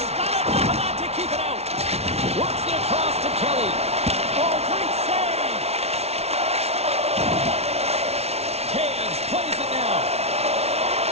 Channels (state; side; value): late; left; 0.31 ms